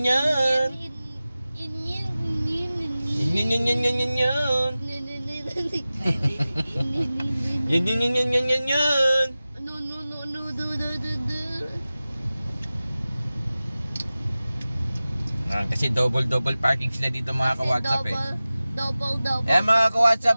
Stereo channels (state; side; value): inverted; both; correlation -0.97